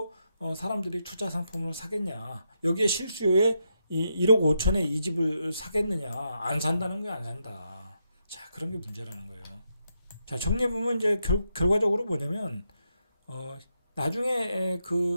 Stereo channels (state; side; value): inverted; both; correlation -0.81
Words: 사람들이 투자 상품을 사겠냐? 여기에 실수요에 1억 5천에 이 집을 사겠느냐? 안 산다는 거야, 안 산다. 자, 그런 게 문제라는 거예요. 자, 정리해 보면 이제 결과적으로 뭐냐면, 나중에